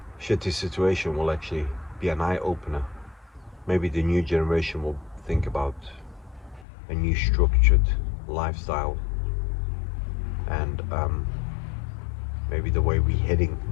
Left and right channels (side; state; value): right; drops out; at 6.7 s